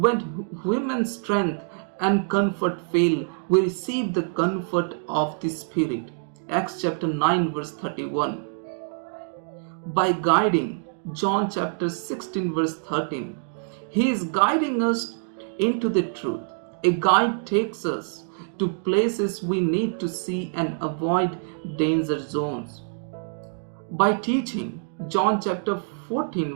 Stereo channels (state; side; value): silent; left; digital silence